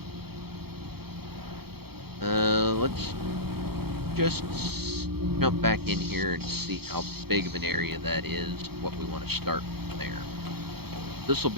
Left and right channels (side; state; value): left; late; 0.96 ms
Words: Let's just jump back in here and see how big of an area that is, what we want to start from there. This will